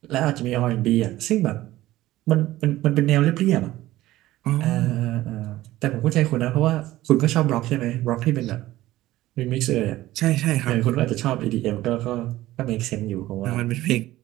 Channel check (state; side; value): quieter; left; 16.0 dB